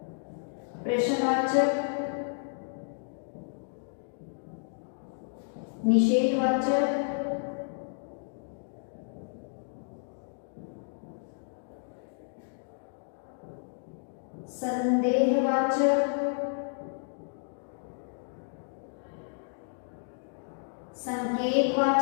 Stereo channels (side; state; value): right; silent; digital silence